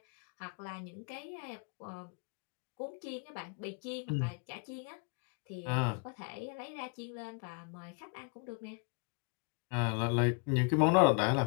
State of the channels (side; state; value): right; quieter; 37.4 dB